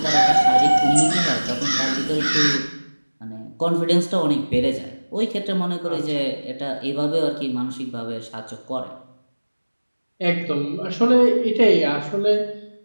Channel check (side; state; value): both; inverted; correlation -1.00